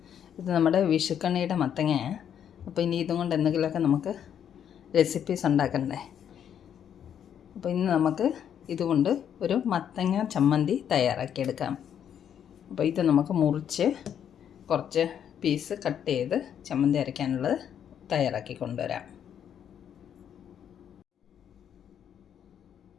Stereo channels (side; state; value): right; quieter; 9.0 dB